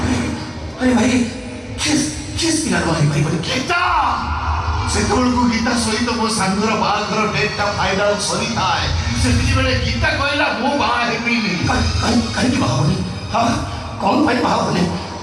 अरे भाई किस पिला को भाई बोले गीता ସେତେବେଳକୁ ଗୀତା ସହିତ ମୋ ସାଙ୍ଗର ବାହାଘର ଡେଟ୍ଟା ଫାଇନାଲ ସରିଥାଏ ସେତିକିବେଳେ ଗୀତା କହିଲା ମୁଁ ବାହା ହେବିନି କାହିଁକି ବାହା ହବନି ହଁ କ'ଣ ପାଇଁ ବାହା ହବନି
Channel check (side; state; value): both; identical; correlation 1.00